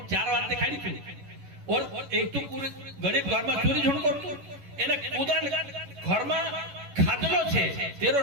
4 बात देखाड़ी छे और एक तो पूरे गरीब घर में चोरी झूठ करतो एने खुदा घर में खादलो छे तेरो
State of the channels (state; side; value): late; left; 11 ms